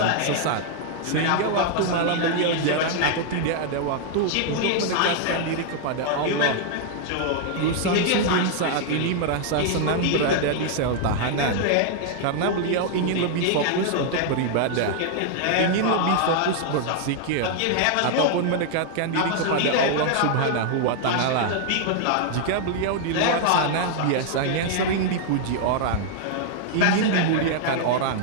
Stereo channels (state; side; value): different; both; correlation 0.00